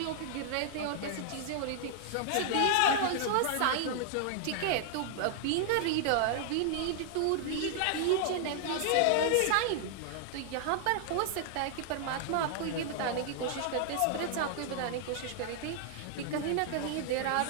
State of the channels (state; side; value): different; both; correlation -0.01